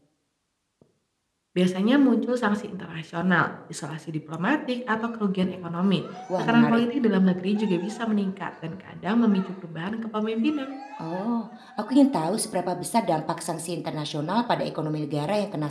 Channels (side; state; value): both; identical; correlation 1.00